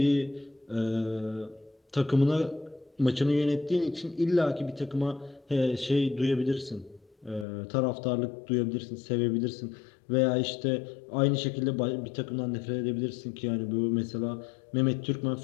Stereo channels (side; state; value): right; drops out; at 7.5 s